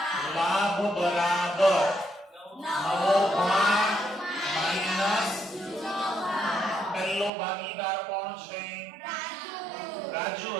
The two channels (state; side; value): drops out; left; at 7.3 s